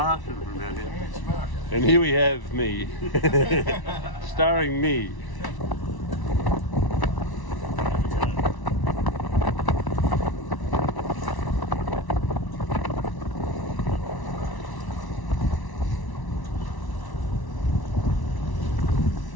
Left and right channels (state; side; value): late; right; 1.1 ms